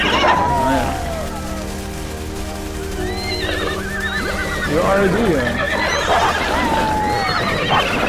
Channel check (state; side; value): identical; both; correlation 1.00